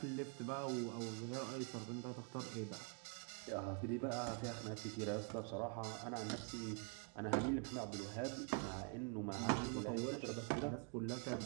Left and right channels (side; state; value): left; quieter; 38.1 dB